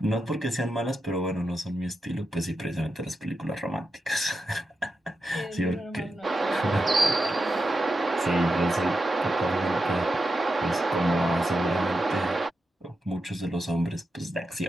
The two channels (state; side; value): normal; both; correlation 0.88